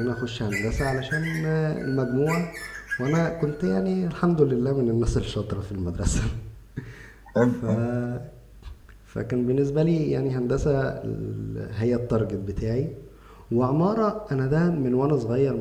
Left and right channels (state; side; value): identical; both; correlation 1.00